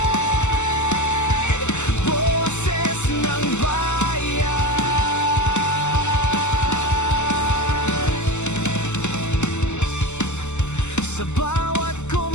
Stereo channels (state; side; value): late; right; 0.83 ms